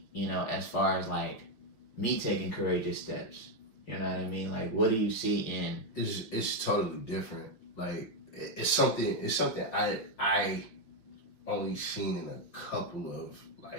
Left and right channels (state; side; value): late; right; 5.6 ms